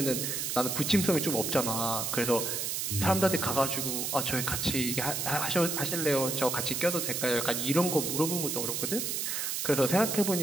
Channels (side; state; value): right; noise; hiss, 1 dB below the sound